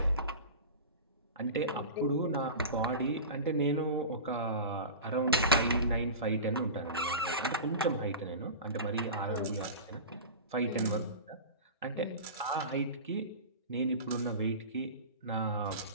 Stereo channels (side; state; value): both; inverted; correlation -0.30